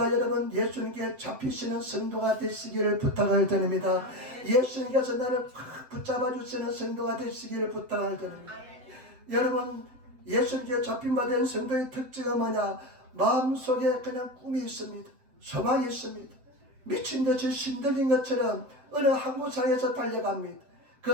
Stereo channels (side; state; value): left; late; 7.8 ms